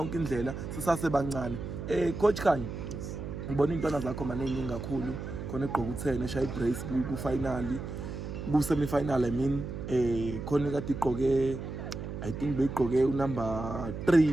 indlela sisasebancane. Coach Khanyo, ngibona intwana zakho maningi kakhulu, khona egqoka u10 eshaya ibrace ku finali, ku semi final. I mean khona kade igqoke, I think beyigqoke number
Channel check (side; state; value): right; noise; hum, 7 dB below the sound